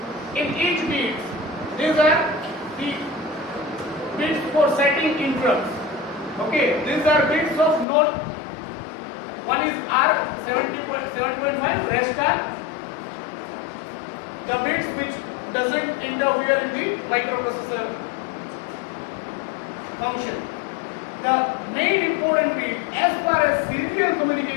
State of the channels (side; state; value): right; drops out; at 7.9 s